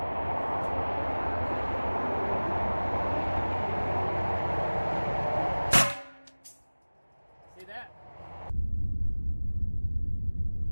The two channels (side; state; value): both; inverted; correlation -1.00